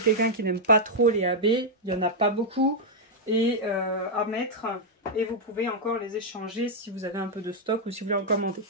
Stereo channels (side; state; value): both; normal; correlation -0.03